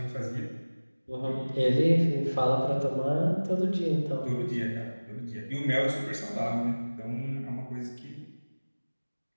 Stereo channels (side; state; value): both; inverted; correlation -1.00